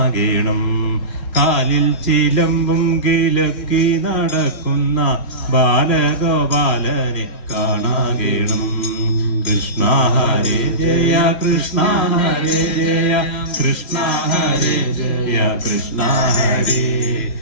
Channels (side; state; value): right; late; 3.0 ms